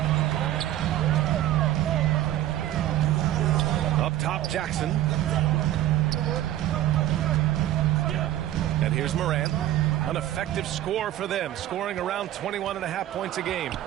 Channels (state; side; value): quieter; left; 13.4 dB